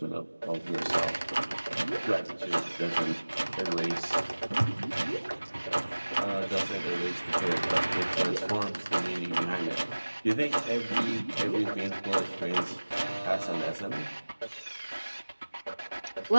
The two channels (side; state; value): both; inverted; correlation -1.00